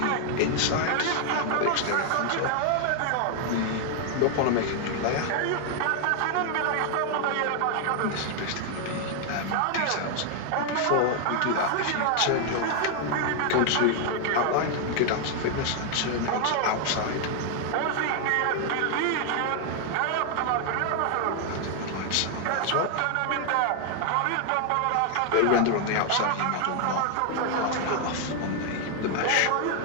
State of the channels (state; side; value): different; both; correlation 0.00